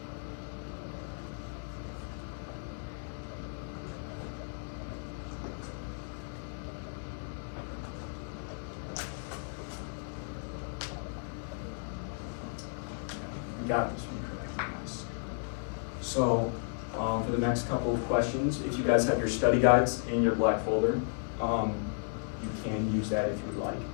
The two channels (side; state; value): right; silent; digital silence